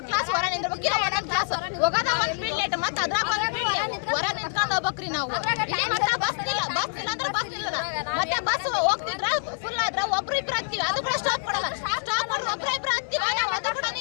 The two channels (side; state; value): right; silent; 61 dB below the other